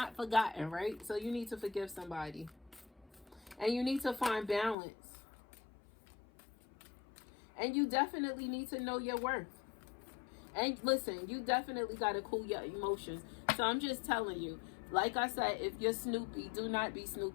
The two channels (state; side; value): drops out; right; at 4.8 s